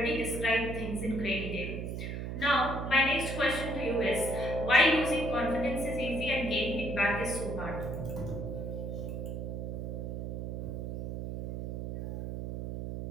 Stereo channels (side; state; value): right; noise; hum, 4 dB below the sound